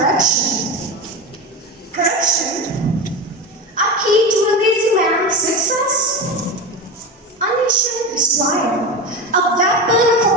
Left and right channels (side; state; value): both; normal; correlation 0.23